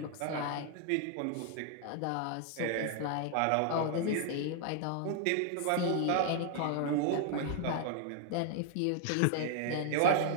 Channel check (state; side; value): different; both; correlation 0.00